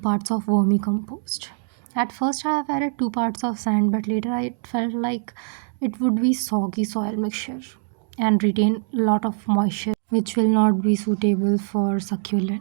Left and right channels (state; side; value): silent; left; digital silence